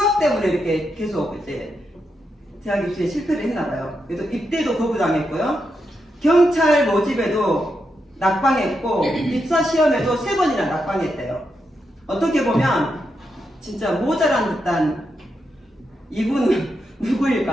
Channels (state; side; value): normal; both; correlation 0.84